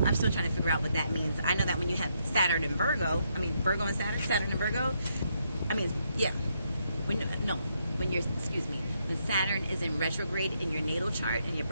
still trying to figure out what that means. I know that when you have Saturn and Virgo, Virgo and Saturn and Virgo, when Saturn is in retrograde in your natal chart, in your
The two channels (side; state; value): both; inverted; correlation -0.77